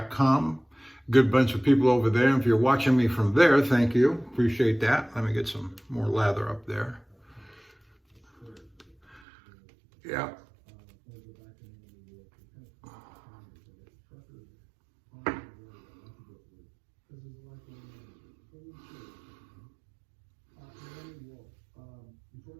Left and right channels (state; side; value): drops out; left; at 9.2 s